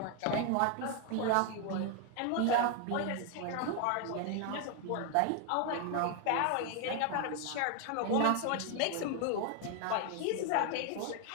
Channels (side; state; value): both; different; correlation 0.01